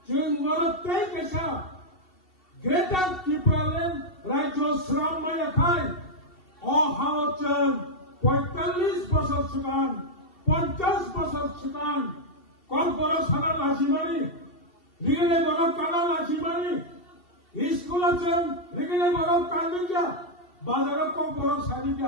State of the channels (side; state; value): right; late; 2.7 ms